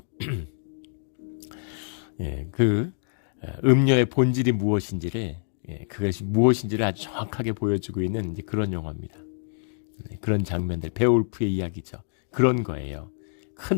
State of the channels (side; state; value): right; silent; digital silence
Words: 그 음녀의 본질이 무엇인지를 그것이 무엇인지를 아주 정확하게 보여주고 있는 이제 그런 영화입니다. 그런 장면들, 베올프의 이야기죠. 그런 거예요.